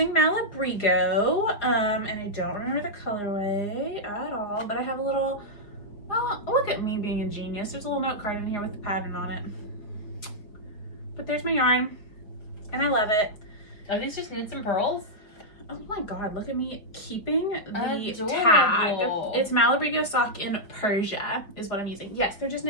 Malabrigo. And I don't remember the colorway at all. But I have a little, well, look at me being a genius. There's a little note card in here with the pattern on it. But there's my yarn. And I love it. Are these just knits and pearls? Oh my god, look at me keeping the Adorable. tag. It's Malabrigo sock in Persia is what I'm using. Yes, they're just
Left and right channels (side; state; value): right; late; 4.9 ms